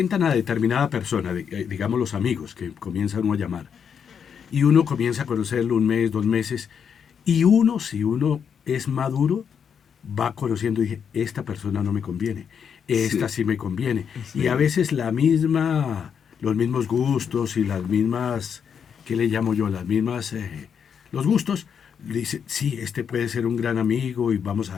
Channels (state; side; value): quieter; right; 7.3 dB